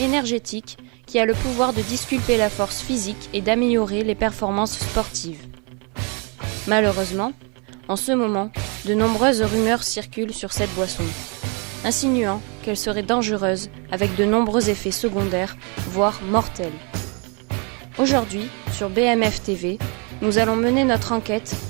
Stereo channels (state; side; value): quieter; left; 34.5 dB